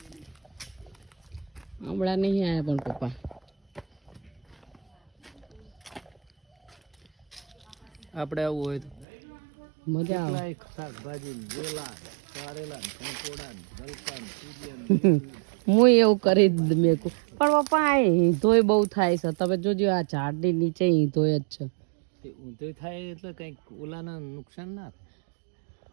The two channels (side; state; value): left; drops out; at 9.1 s